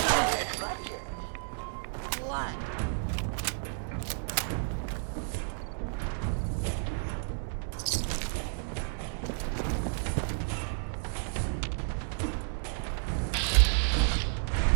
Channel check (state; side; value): silent; left; 57 dB below the other